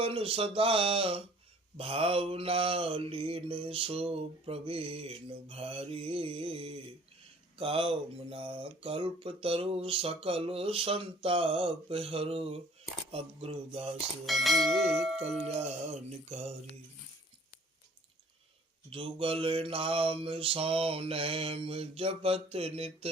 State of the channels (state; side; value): normal; both; correlation 0.54